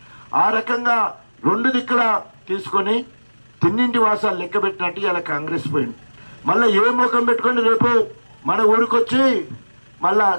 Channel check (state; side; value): inverted; both; correlation -1.00